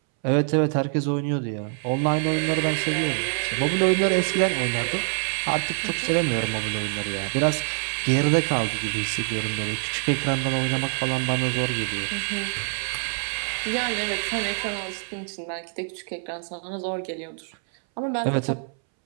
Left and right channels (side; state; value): left; silent; 62 dB below the other